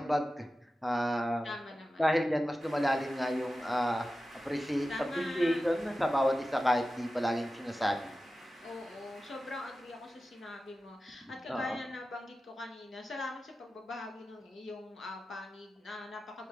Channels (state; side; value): normal; both; correlation 0.94